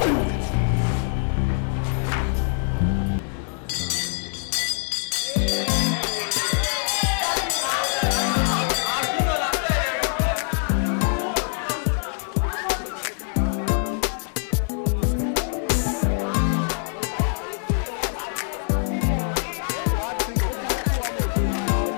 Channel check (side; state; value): right; silent; 58 dB below the other